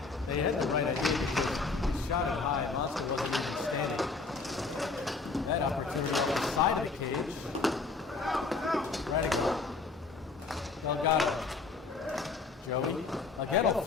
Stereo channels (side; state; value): right; quieter; 4.2 dB